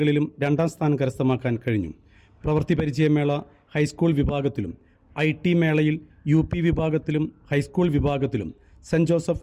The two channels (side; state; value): both; identical; correlation 1.00